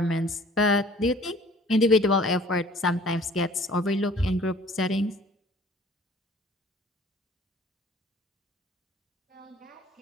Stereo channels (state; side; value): normal; both; correlation 0.51